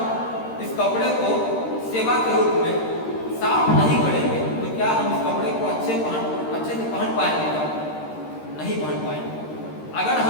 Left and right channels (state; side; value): late; right; 13 ms